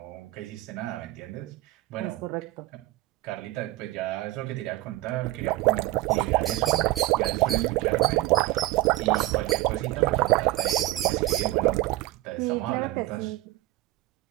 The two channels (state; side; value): quieter; left; 18.0 dB